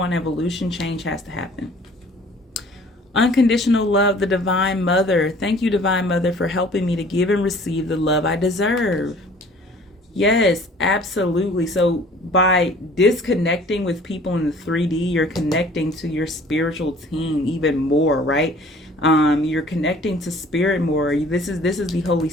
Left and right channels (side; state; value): both; normal; correlation 0.51